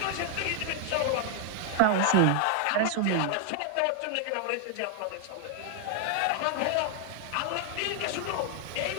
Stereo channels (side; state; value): both; different; correlation 0.00